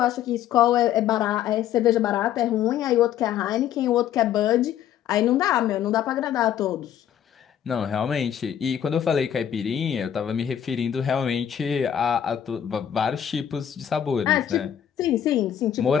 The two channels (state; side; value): quieter; right; 10.0 dB